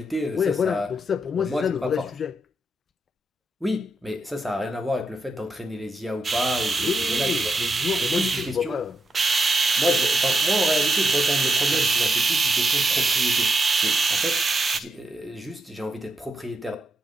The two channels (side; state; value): both; normal; correlation 0.82